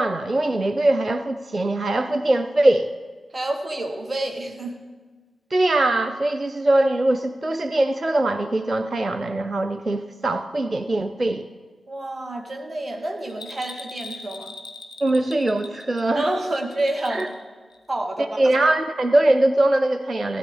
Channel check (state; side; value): normal; both; correlation 0.96